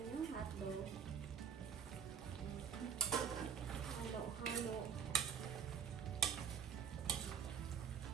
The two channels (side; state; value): left; quieter; 7.4 dB